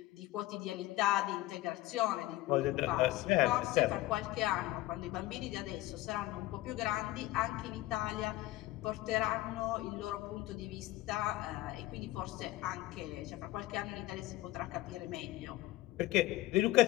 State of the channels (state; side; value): quieter; right; 16.8 dB